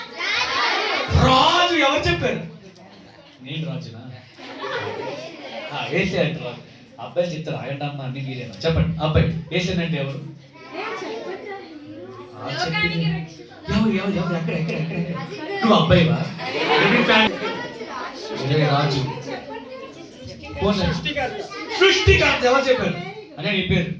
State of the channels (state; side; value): identical; both; correlation 1.00